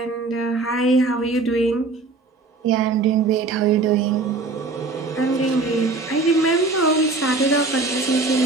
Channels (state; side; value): quieter; left; 3.6 dB